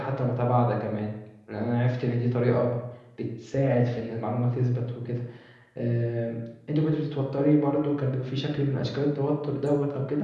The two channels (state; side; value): identical; both; correlation 1.00